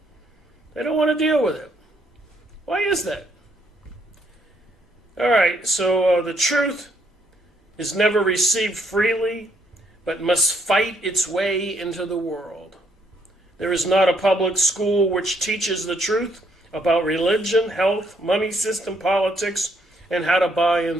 They don't want to deal with it. Why is that? All right, so the truth is never received freely, but must fight its way into the world. There is not a public school which teaches the truth about religion, health, money system, politics, and how to buy and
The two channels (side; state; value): both; normal; correlation 0.71